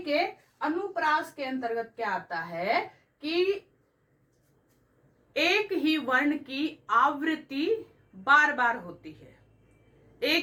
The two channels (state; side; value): identical; both; correlation 1.00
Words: कि अनुप्रास के अंतर्गत क्या आता है कि एक ही वर्ण की आवृत्ति बार बार होती है,